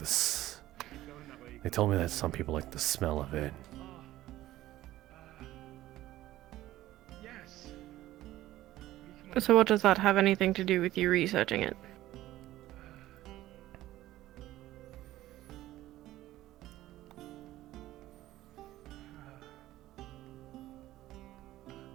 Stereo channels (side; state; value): left; quieter; 15.3 dB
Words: They told me that some people like the smell of it. So what does that have anything to do with you researching it?